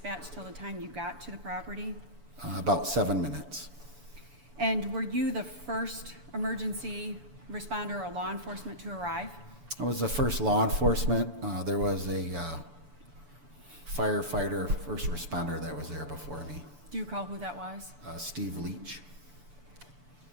till the time you got to the property? About 7 minutes. And were you the first emergency responder or law enforcement to arrive? I was the first law enforcement. There was a firefighter, first responder that was there before me. Do you recall who that was? Steve Leach.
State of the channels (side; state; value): left; late; 11 ms